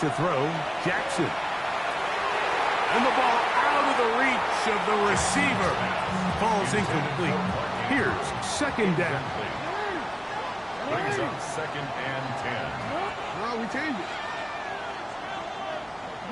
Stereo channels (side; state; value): both; identical; correlation 1.00